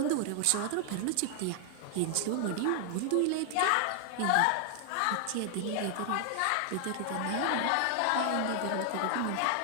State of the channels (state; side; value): different; both; correlation 0.00